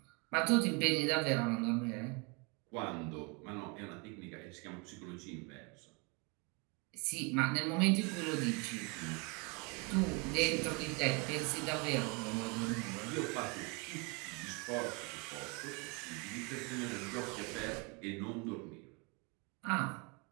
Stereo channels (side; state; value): left; quieter; 31.0 dB